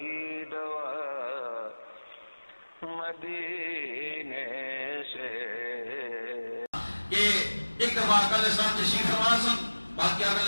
دوا مدینے سے۔ کہ ایک دفعہ آقا علیہ السلام تشریف فرما سن، باقی آقا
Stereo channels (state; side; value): inverted; both; correlation -1.00